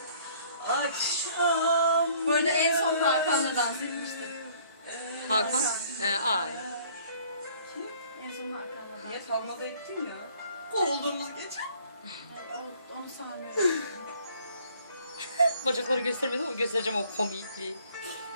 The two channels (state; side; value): inverted; both; correlation -0.57